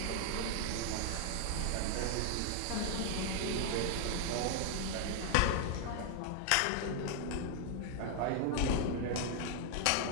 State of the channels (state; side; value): different; both; correlation 0.00